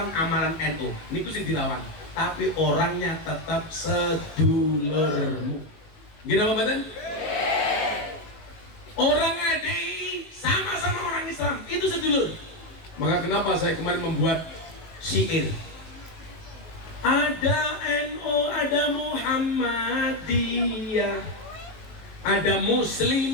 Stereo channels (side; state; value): right; late; 19 ms